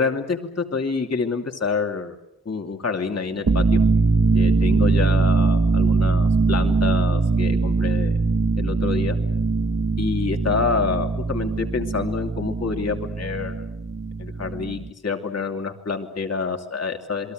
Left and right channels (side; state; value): both; normal; correlation 0.64